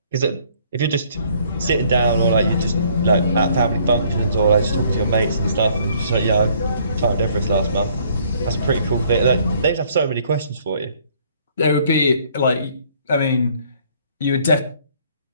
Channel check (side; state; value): both; inverted; correlation -0.62